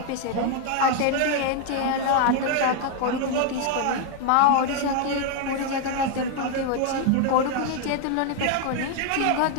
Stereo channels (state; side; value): different; both; correlation 0.00